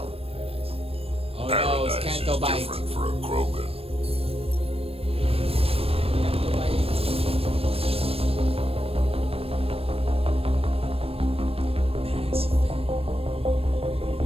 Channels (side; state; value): left; late; 0.28 ms